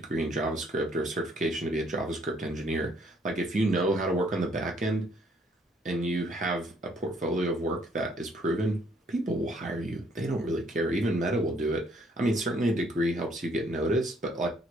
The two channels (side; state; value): both; normal; correlation 0.66